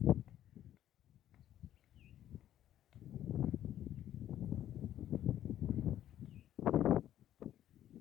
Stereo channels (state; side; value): quieter; right; 11.8 dB